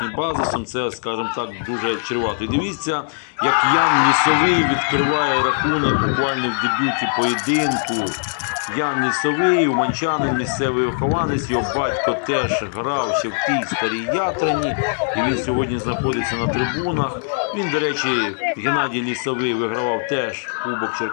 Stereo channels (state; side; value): silent; right; digital silence